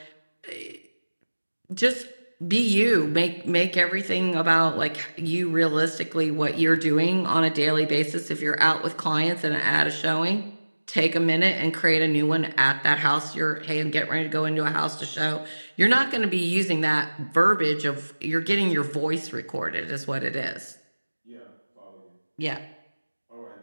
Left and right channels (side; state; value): both; inverted; correlation -1.00